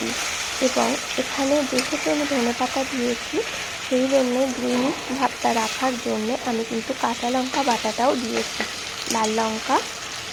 এবং এখানে যেহেতু আমি ধনেপাতা দিয়েছি, সেই জন্যে গ্রিন ভাবটা রাখার জন্যে আমি কিন্তু কাঁচা লঙ্কা বাটাটাও দিয়েছি, লাল লঙ্কা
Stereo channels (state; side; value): identical; both; correlation 1.00